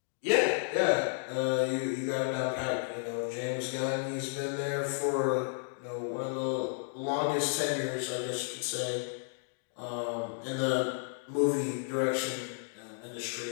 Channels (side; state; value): right; silent; digital silence